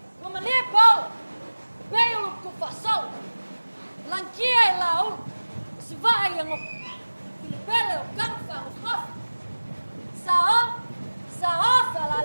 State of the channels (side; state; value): both; inverted; correlation -1.00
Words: Ua malie pao. Beulu ku fasol. Lankia e la ul. Sivai yang o. Pilipele o kangfa o kof. Sao fala